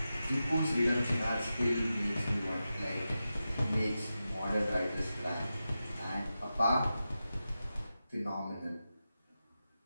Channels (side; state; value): both; inverted; correlation -0.92